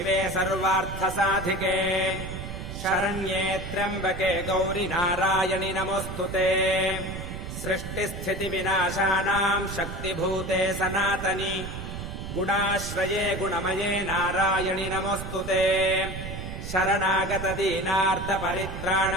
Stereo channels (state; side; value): noise; right; rumble, 7 dB below the sound